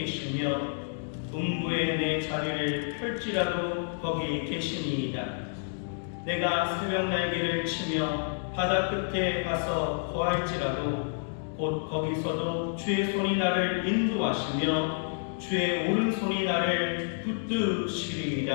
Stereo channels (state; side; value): silent; right; digital silence